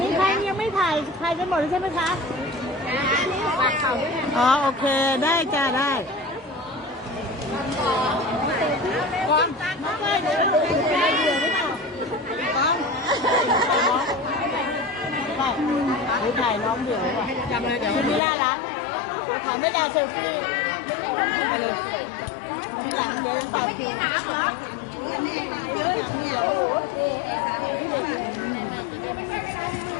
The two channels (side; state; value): right; drops out; at 18.2 s